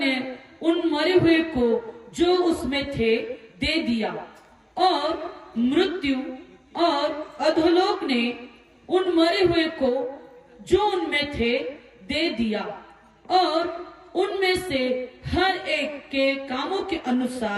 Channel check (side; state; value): both; identical; correlation 1.00